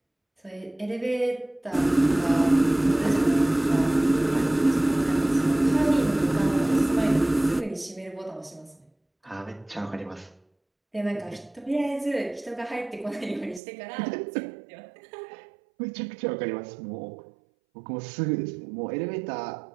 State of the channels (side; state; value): left; drops out; at 13.6 s